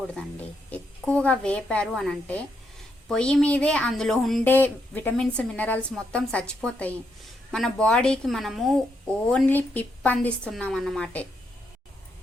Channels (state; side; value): normal; both; correlation 0.79